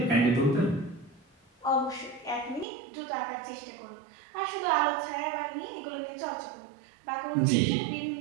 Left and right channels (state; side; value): drops out; left; at 2.7 s